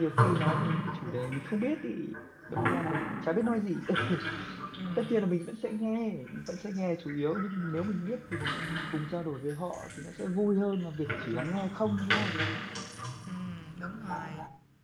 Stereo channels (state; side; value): identical; both; correlation 1.00